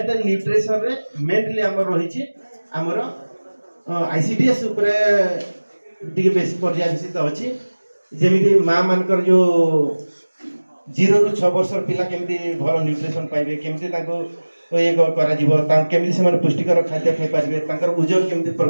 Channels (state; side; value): inverted; both; correlation -1.00